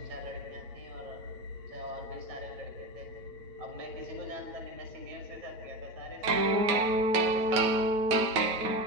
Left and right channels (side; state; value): left; late; 9.3 ms